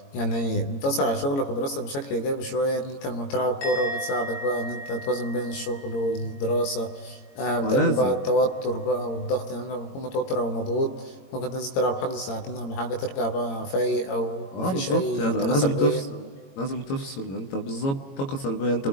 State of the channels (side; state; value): right; late; 22 ms